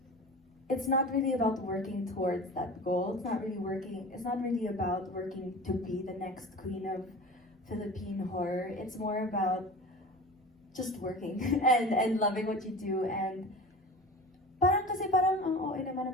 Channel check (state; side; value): normal; both; correlation 0.35